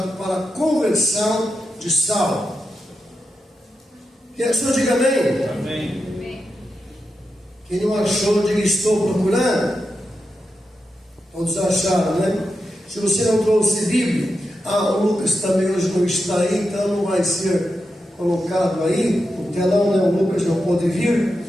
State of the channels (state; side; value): normal; both; correlation 0.88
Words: para a conversão de Saulo. Quem achou, diga amém. Amém. Quem não achou, diga estou procurando. Todos acharam, né? Se você não trouxe Bíblia, o Lucas também hoje não está aí, então não vai ser colocado aí, o telão, né? O Lucas não pôde vir.